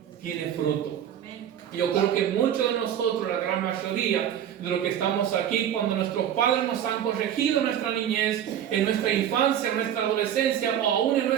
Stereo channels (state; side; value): quieter; left; 10.0 dB